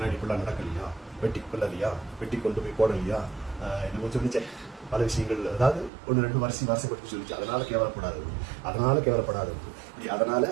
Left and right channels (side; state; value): left; drops out; at 5.9 s